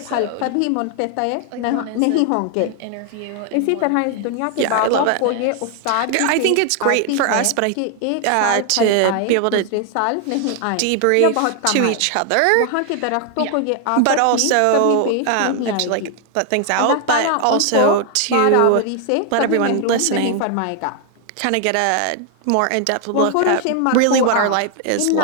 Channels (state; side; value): different; both; correlation 0.00